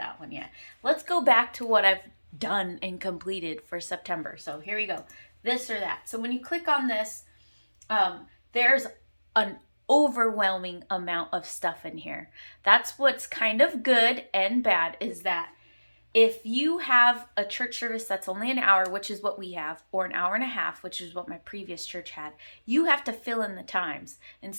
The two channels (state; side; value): inverted; both; correlation -1.00